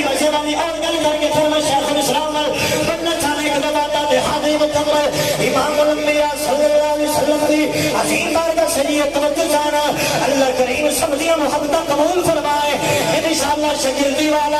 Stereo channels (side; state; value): right; noise; hum, 20 dB below the sound